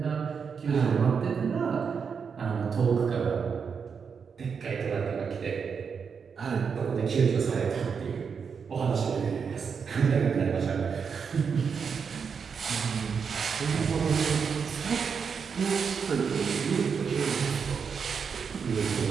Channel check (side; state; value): left; quieter; 6.2 dB